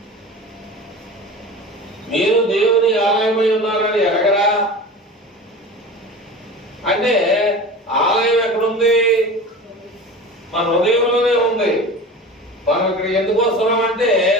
మీరు దేవుని ఆలయమై ఉన్నారని ఎరగరా? అంటే ఆలయం ఎక్కడుంది? మన హృదయంలోనే ఉంది. మనం ఇక్కడ ఎందుకు వస్తున్నాం అంటే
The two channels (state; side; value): normal; both; correlation 0.34